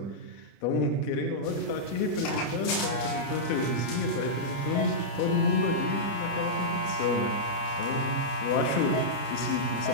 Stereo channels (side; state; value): right; late; 30 ms